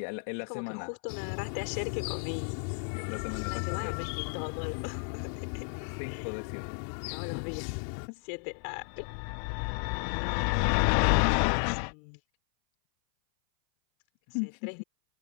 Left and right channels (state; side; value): silent; right; 56 dB below the other